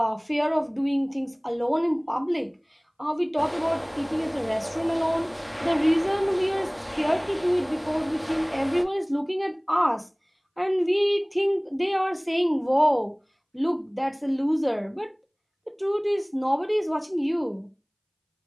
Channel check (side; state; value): both; identical; correlation 1.00